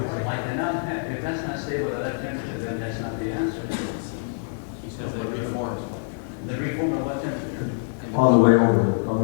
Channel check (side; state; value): right; silent; digital silence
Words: cannot have, if that's not stable at that temperature, then that's not the answer. The reform at what temperature? On the way